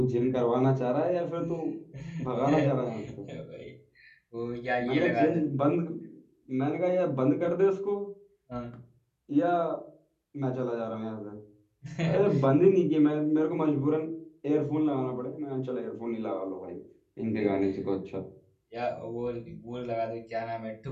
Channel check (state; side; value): identical; both; correlation 1.00